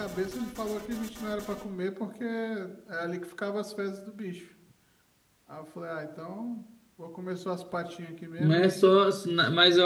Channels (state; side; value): identical; both; correlation 1.00